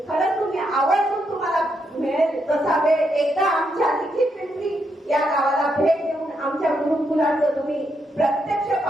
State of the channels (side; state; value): both; normal; correlation 0.79